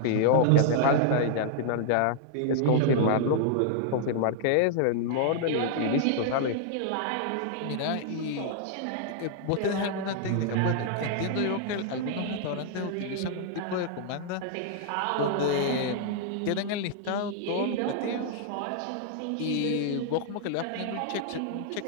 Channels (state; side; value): different; both; correlation -0.01